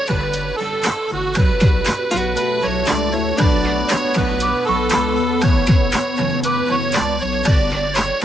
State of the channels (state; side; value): normal; both; correlation 0.83